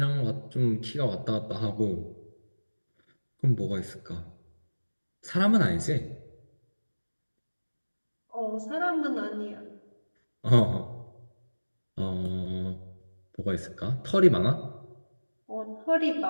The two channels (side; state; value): both; inverted; correlation -1.00